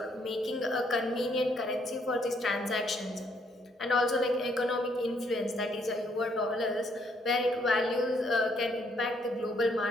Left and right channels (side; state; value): both; normal; correlation 0.70